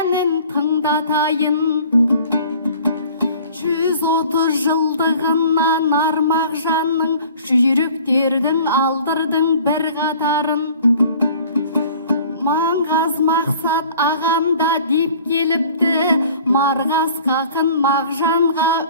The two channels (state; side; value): inverted; both; correlation -0.49